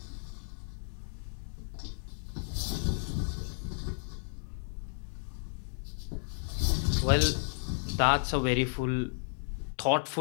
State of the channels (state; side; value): silent; right; digital silence